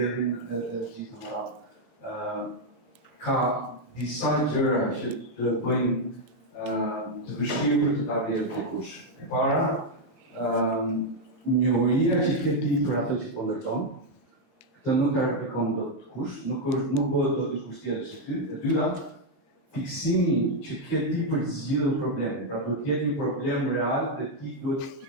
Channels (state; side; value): late; right; 9.3 ms